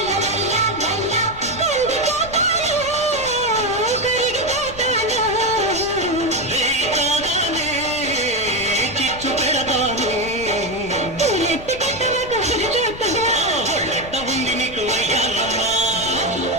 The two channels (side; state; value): left; noise; rumble, 15 dB below the sound